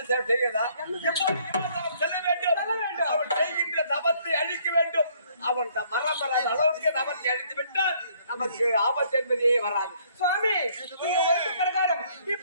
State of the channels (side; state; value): both; inverted; correlation -0.63